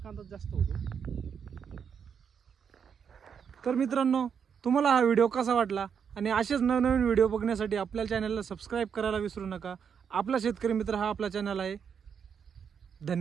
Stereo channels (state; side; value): quieter; left; 7.2 dB